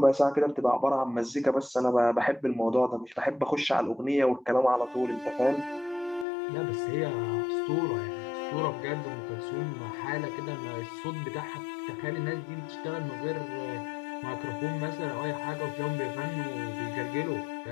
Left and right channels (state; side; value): drops out; right; at 6.2 s